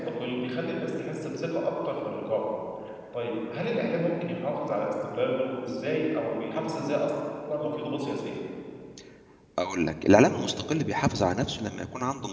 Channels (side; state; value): both; identical; correlation 1.00